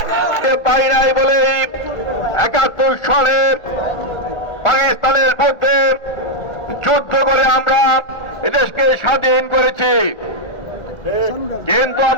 পাই নাই বলে ৭১ সালে পাকিস্তানের মধ্যে যুদ্ধ করে আমরা এদেশকে স্বাধীন করেছি, কিন্তু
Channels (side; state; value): right; late; 1.4 ms